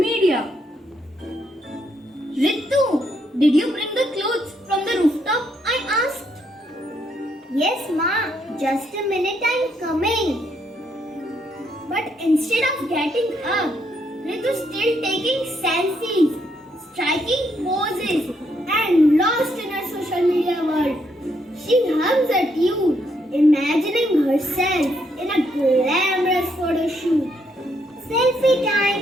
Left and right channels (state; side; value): normal; both; correlation 0.75